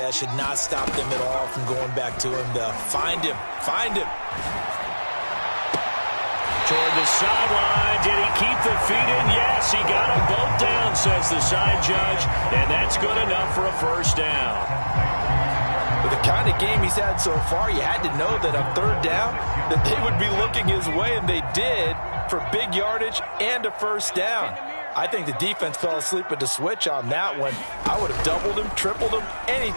should not stop them at all from going back to him to find him. Find him. Toward the sideline. Did he keep the feet in? Yes, he got them both down, says the side judge. And that's good enough for a 1st down. With the kind of game he's had so far, you had to know that on 3rd down that they would be looking his way, and they did, for big yardage and a 1st down. I think the defense fell asleep at the switch on that one. I would have doubled him, tripled him,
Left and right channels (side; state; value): both; inverted; correlation -1.00